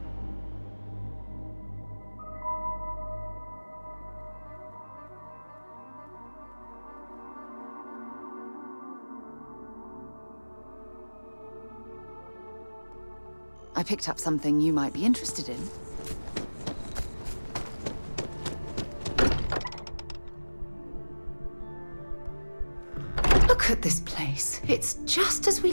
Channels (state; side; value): inverted; both; correlation -1.00